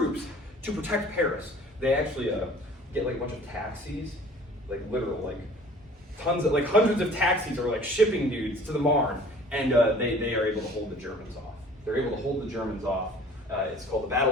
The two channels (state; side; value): normal; both; correlation 0.49